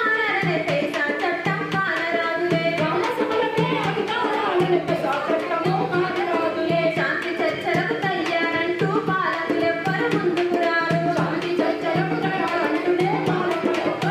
పేసా చట్టం కానరాదులే గ్రామసభలకే అధికారాలనే పేసా చట్టము కానరాదులే శాంతి చర్చలకు తయ్యారంటూ పాలకులెవ్వరు ముందుకు రారు శాంతి చర్చలకు తయారంటూనే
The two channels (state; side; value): identical; both; correlation 1.00